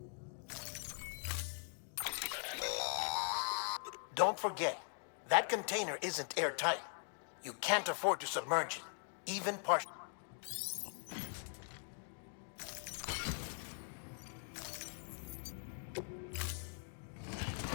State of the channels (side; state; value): right; silent; 50 dB below the other